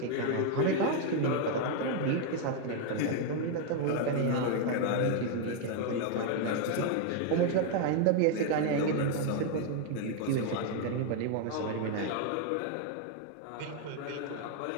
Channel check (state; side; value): different; both; correlation 0.00